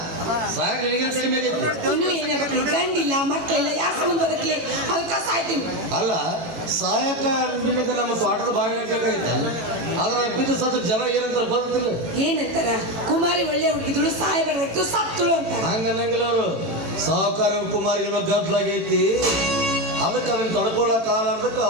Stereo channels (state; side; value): late; left; 18 ms